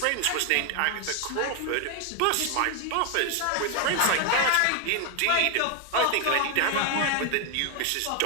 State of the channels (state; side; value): different; both; correlation 0.01